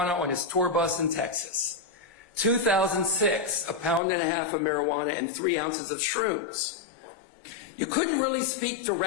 on his tour bus in Texas. 2006, 1.5 pounds of marijuana and 3 ounces of shrooms. You couldn't really speak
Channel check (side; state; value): right; drops out; at 4.0 s